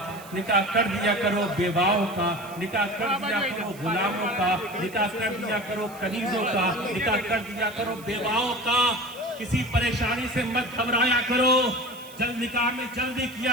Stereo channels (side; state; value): right; noise; hiss, 20 dB below the sound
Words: نکاح کر دیا کرو بیواؤں کا، نکاح کر دیا کرو غلاموں کا، نکاح کر دیا کرو کنیزوں کا، نکاح کر دیا کرو بیواؤں کا۔ کسی پریشانی سے مت گھبرایا کرو، نکاح میں جلدی